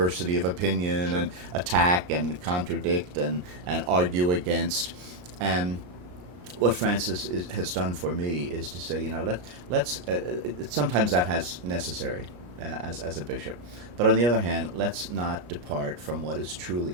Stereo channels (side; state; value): left; late; 33 ms